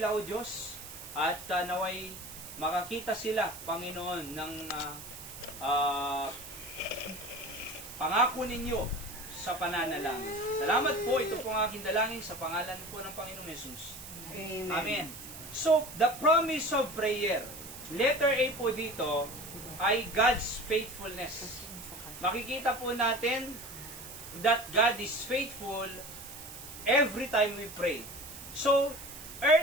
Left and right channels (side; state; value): right; noise; hiss, 13 dB below the sound